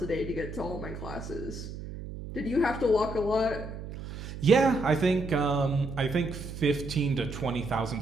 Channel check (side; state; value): right; noise; hum, 10 dB below the sound